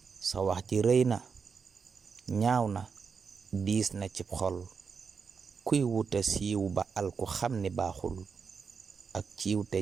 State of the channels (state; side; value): quieter; left; 5.7 dB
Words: sa wax ci rëy na ñaaw na diis na cib xol, kuy wuta siiw ba alku xam ni baaxul. ak ciiw te